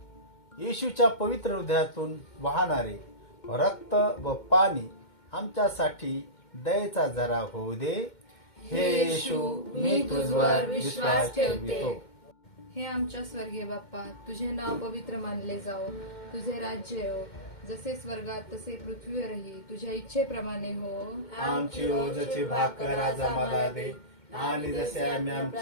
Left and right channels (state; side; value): late; right; 2.1 ms